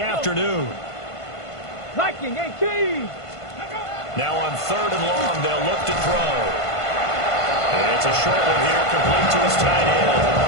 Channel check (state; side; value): late; right; 1.5 ms